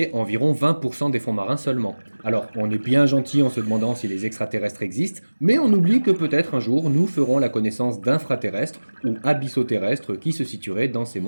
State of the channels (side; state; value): both; inverted; correlation -1.00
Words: environ 20% des fonds marins seulement. Alors, on est bien gentil en se demandant si les extraterrestres existent, mais on oublie que peut-être un jour, nous ferons la connaissance d'infraterrestres ou abyssoterrestres qui se situeraient dans ces